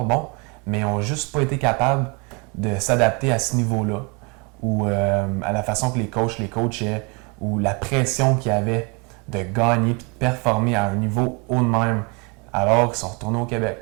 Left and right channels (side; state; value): left; quieter; 31.4 dB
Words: bons, mais ils n'ont juste pas été capables de s'adapter à ce niveau-là. Ou à la façon que les coachs les coachaient, ou la pression qu'il y avait de gagner et de performer à un niveau haut de même, alors qu'ils sont retournés au